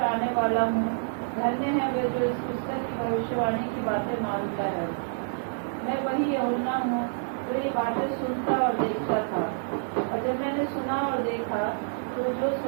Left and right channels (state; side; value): silent; left; digital silence